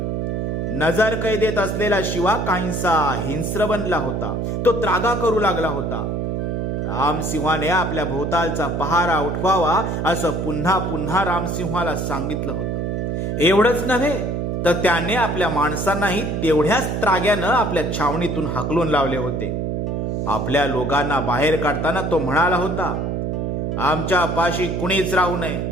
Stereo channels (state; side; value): noise; right; hum, 1 dB below the sound